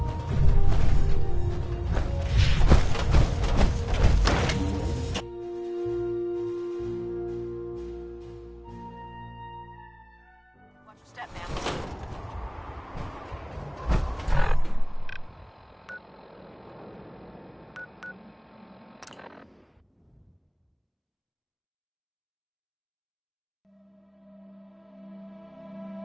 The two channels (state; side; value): identical; both; correlation 1.00